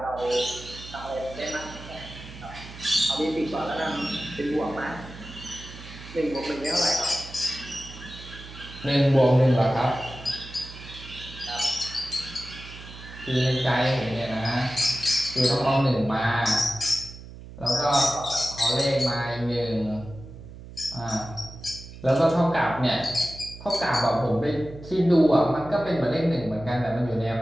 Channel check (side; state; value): right; noise; hum, 15 dB below the sound